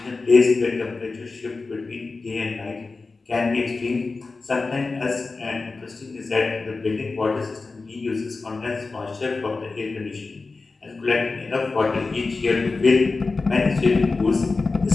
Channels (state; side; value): quieter; right; 3.9 dB